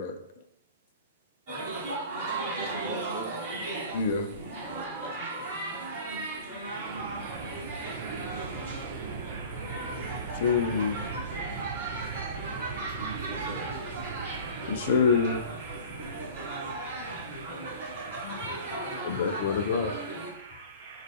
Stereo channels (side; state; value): both; inverted; correlation -0.40